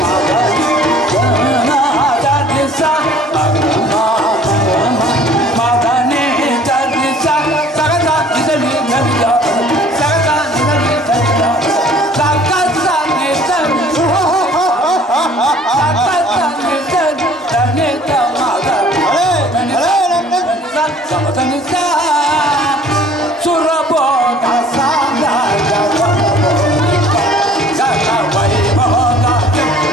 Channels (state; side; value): normal; both; correlation 0.52